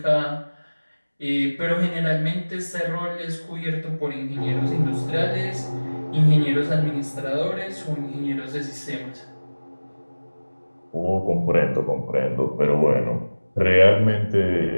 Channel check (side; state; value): both; inverted; correlation -1.00